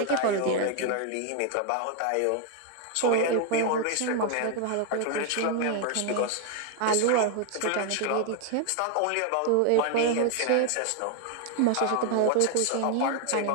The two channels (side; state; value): both; different; correlation 0.01